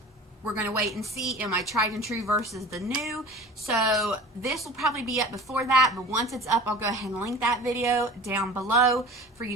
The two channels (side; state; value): both; normal; correlation 0.40